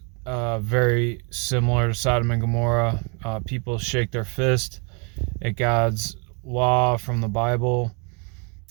very similar to Sodom and Gomorrah. People shake their fist at God's law from the Bible.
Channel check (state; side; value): quieter; left; 35.4 dB